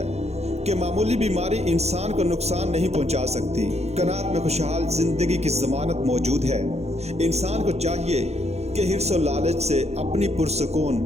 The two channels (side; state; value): left; late; 0.31 ms